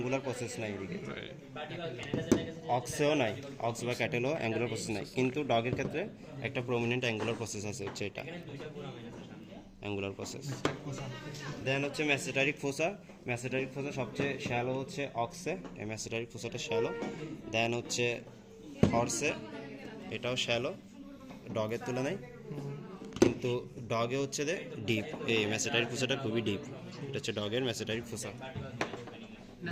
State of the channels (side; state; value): both; identical; correlation 1.00